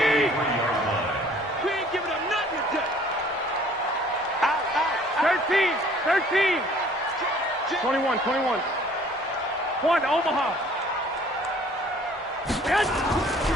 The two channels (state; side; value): normal; both; correlation 0.55